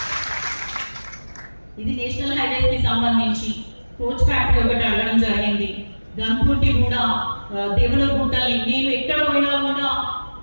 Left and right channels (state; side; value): inverted; both; correlation -1.00